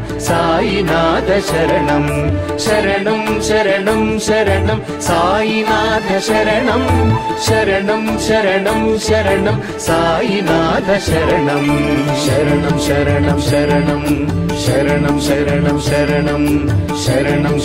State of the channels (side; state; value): both; identical; correlation 1.00